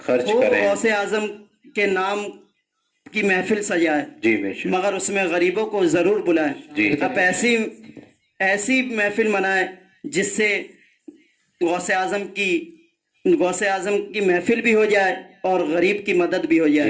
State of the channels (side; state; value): both; identical; correlation 1.00